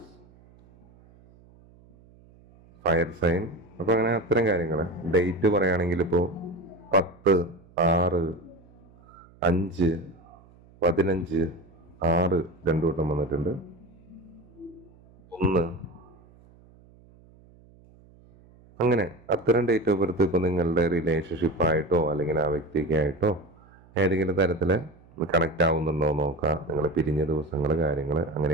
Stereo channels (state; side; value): noise; right; hum, 26 dB below the sound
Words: fire sign. അപ്പോൾ അങ്ങനെ അത്തരം കാര്യങ്ങൾ. ഡേറ്റ് പറയുകയാണെങ്കിൽ ഇപ്പോൾ 10, 6, 5, 15, 6 2 വട്ടം വന്നിട്ടുണ്ട്, 1. അങ്ങനെ അത്തരം ഡേറ്റ് ഓഫ് ബർത്ത് ഇപ്പോൾ നിങ്ങളുടെ റിലേഷൻഷിപ്പായിട്ടോ അല്ലെങ്കിൽ ആ വ്യക്തിക്കായിട്ടോ ഏതെങ്കിലും തരത്തിൽ കണക്റ്റ് ആവുന്നുണ്ടോ നോക്കാം. നിങ്ങൾ പിരിഞ്ഞ ദിവസങ്ങൾ, കാര്യങ്ങൾ